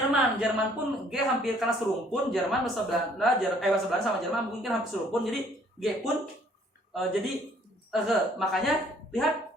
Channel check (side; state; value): both; normal; correlation 0.61